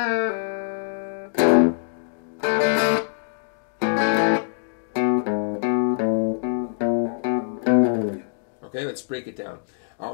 Okay, let's break it down.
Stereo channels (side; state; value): right; silent; digital silence